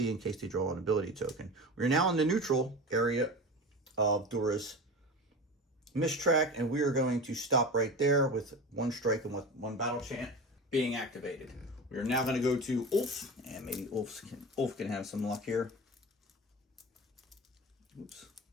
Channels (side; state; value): both; normal; correlation 0.30